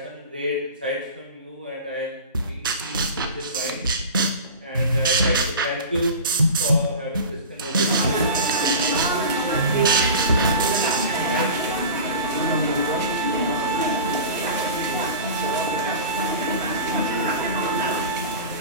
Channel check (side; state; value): both; inverted; correlation -0.33